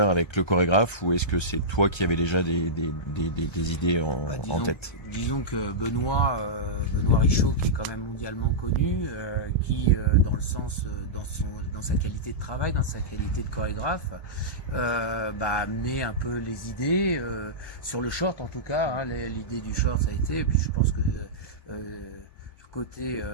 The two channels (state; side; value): late; right; 1.3 ms